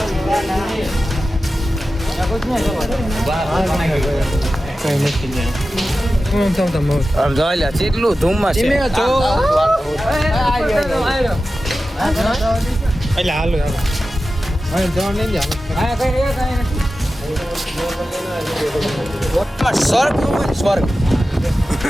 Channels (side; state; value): both; normal; correlation 0.94